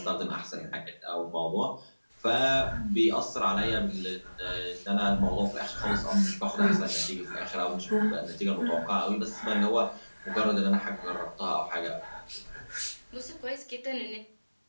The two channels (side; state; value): both; inverted; correlation -1.00